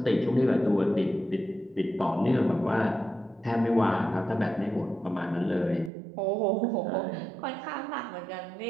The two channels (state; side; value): drops out; left; at 5.9 s